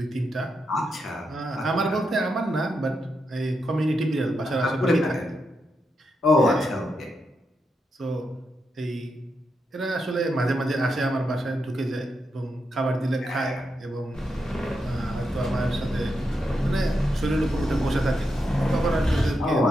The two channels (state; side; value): normal; both; correlation 0.84